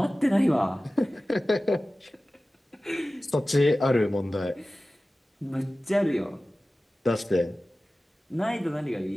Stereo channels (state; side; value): normal; both; correlation 0.96